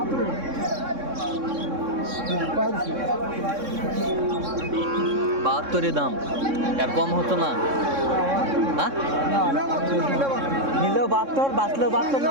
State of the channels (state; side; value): late; left; 3.6 ms